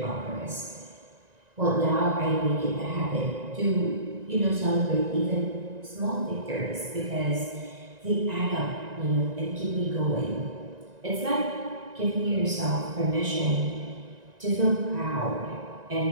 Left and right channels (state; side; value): late; left; 1.9 ms